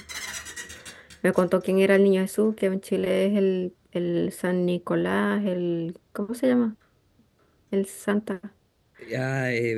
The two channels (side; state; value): both; identical; correlation 1.00